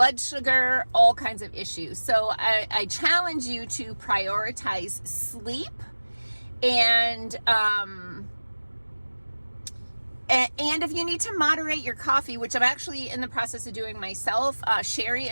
sugar, all kinds of issues. So I challenge you to prioritize sleep and if you need to moderate your coffee, which I'm actually in the process of doing myself, Sherry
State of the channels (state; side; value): inverted; both; correlation -1.00